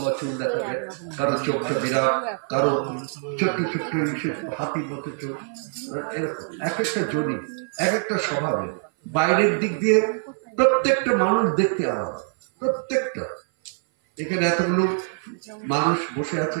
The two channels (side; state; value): left; silent; 58 dB below the other